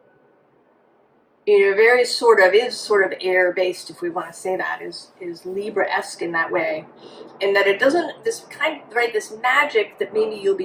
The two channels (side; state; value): both; identical; correlation 1.00